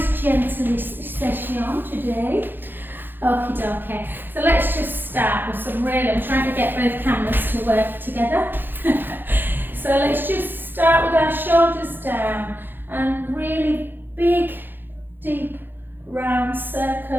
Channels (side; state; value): left; late; 0.096 ms